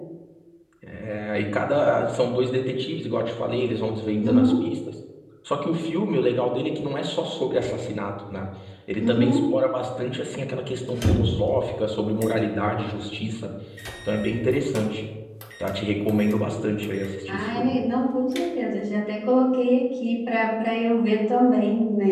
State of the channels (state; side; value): identical; both; correlation 1.00